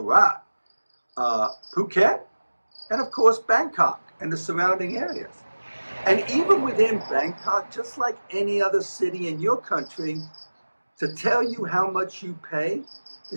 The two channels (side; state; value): both; inverted; correlation -1.00